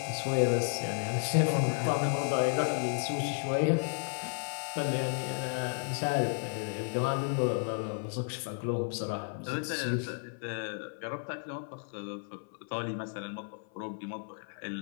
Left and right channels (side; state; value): right; silent; 56 dB below the other